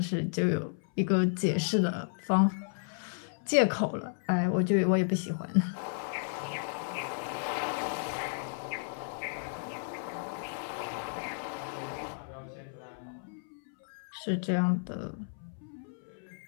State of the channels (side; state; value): right; silent; 56 dB below the other